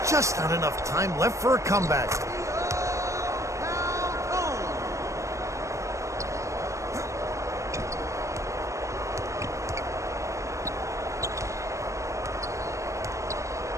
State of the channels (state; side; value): late; left; 0.15 ms